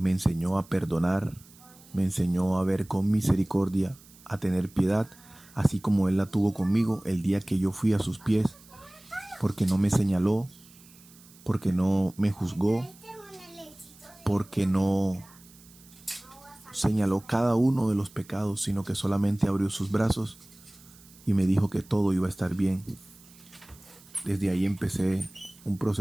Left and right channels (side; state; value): right; noise; hiss, 24 dB below the sound